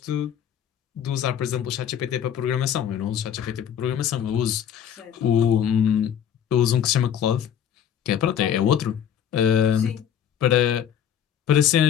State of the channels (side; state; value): right; quieter; 9.1 dB